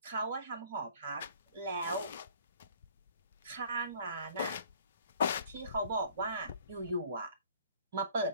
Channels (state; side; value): inverted; both; correlation -0.53